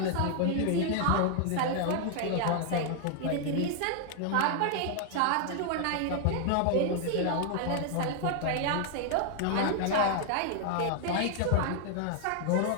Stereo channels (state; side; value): different; both; correlation 0.00